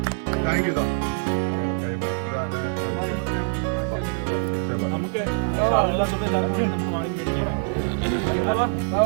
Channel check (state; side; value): silent; left; 62 dB below the other